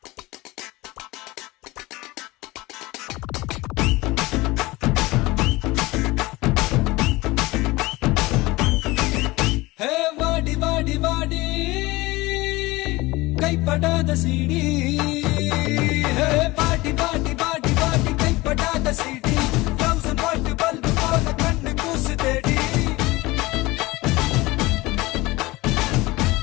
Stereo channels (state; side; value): quieter; right; 21.0 dB